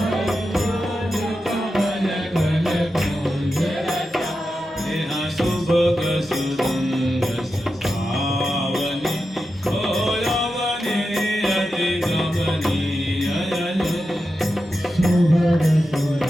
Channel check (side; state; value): both; normal; correlation 0.90